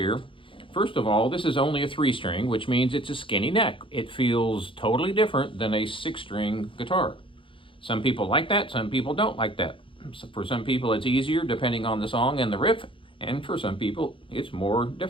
First of all, this is only a 3-string, which means it's a skinny neck. It feels totally different than a 6-string guitar. Some people like that, some people don't like that. So for some people it's easier depending on the song and the riff, and for some people it's more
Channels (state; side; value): late; right; 0.25 ms